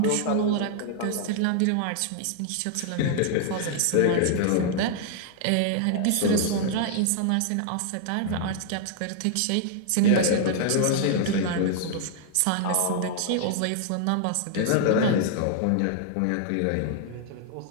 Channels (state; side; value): different; both; correlation 0.00